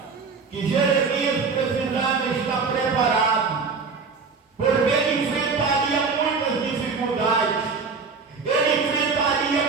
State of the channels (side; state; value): left; quieter; 4.9 dB